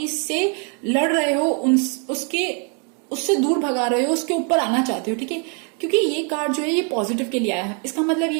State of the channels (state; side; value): quieter; left; 37.6 dB